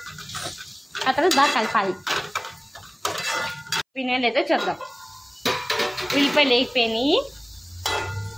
ఆ తర్వాత బాగా కలపాలి. వినేలేదో చూద్దాం. ఉల్లిపాయలు వేగిపోయినాయి.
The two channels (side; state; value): both; identical; correlation 1.00